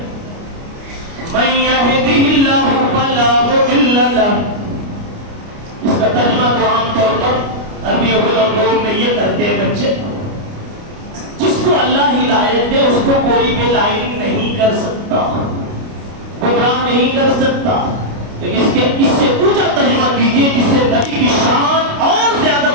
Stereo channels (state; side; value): late; left; 29 ms